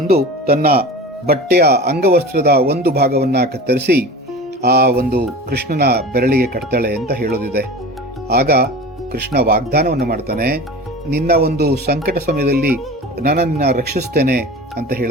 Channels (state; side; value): normal; both; correlation 0.34